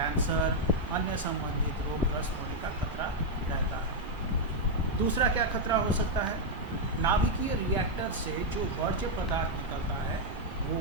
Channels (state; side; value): normal; both; correlation -0.01